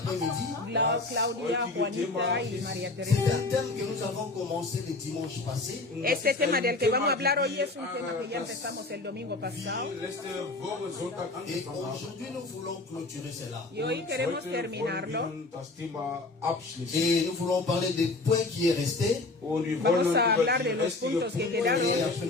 Claudia, Juanita y María C'est Teresa. un thème que nous avons commencé le dimanche passé. Este tema del que vamos a hablar hoy es un tema que ya empezamos el domingo pasado. Et aujourd'hui, nous voulons clôturer cela. Y hoy queremos terminarlo. Et nous voulons parler des points qui est resté. Vamos a hablar de los puntos que quedaron Et après,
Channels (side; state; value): right; quieter; 3.2 dB